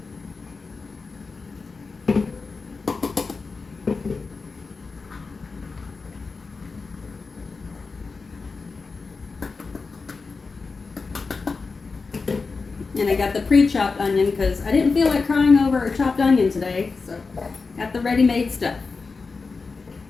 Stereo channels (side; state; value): right; quieter; 4.4 dB